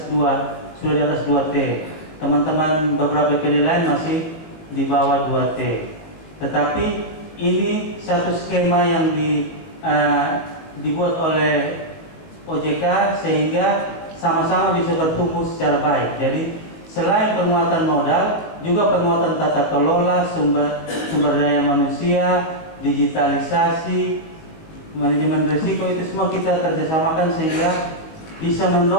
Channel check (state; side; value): late; right; 19 ms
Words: 2, sudah di atas 2T. Teman-teman beberapa BPD lain masih di bawah 2T. Tetapi ini satu skema yang dibuat oleh OJK sehingga sama-sama bisa bertumbuh secara baik. Jadi selain penguatan modal, juga penguatan tata kelola, sumber daya manusia, digitalisasi, manajemen risiko, itu semua kita kerjasamakan sehingga bisa